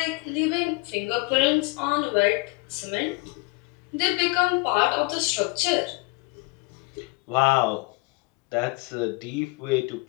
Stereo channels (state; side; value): quieter; right; 26.7 dB